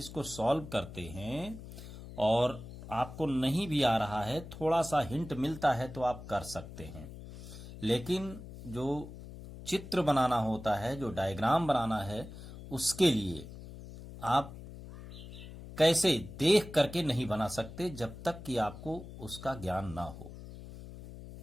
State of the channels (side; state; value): left; noise; hum, 13 dB below the sound